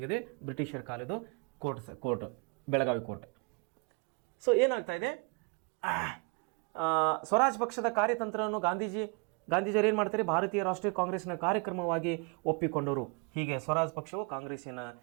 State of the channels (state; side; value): quieter; left; 33.4 dB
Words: ಇದೆ, ಬ್ರಿಟಿಷರ ಕಾಲದ ಕೋರ್ಟ್ ಬೆಳಗಾವಿ ಕೋರ್ಟ್. ಸೊ ಏನಾಗ್ತಾ ಇದೆ, ಸ್ವರಾಜ್ ಪಕ್ಷದ ಕಾರ್ಯತಂತ್ರವನ್ನು ಗಾಂಧೀಜಿಯವರು ಏನು ಮಾಡ್ತಾರೆ, ಭಾರತೀಯ ರಾಷ್ಟ್ರೀಯ ಕಾಂಗ್ರೆಸ್ನ ಕಾರ್ಯಕ್ರಮವಾಗಿ ಒಪ್ಪಿಕೊಂಡರು. ಹೀಗೆ ಸ್ವರಾಜ್ ಪಕ್ಷವು